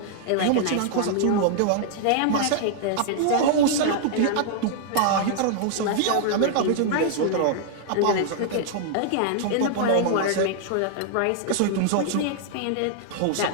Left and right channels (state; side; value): different; both; correlation -0.01